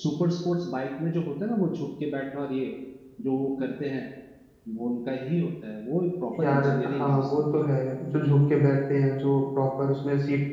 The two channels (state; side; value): identical; both; correlation 1.00